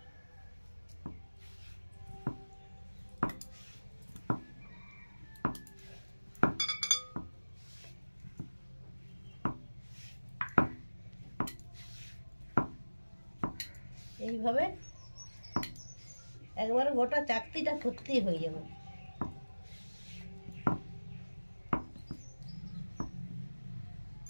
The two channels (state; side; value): inverted; both; correlation -1.00